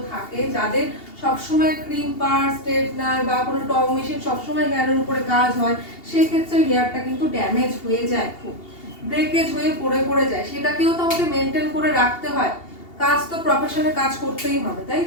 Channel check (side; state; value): right; late; 2.8 ms